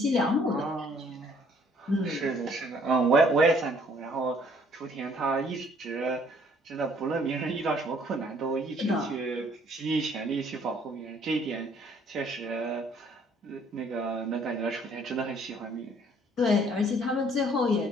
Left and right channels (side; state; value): both; normal; correlation 0.61